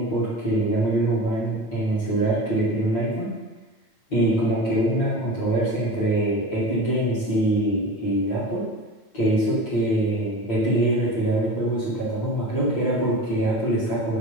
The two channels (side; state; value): right; late; 9.0 ms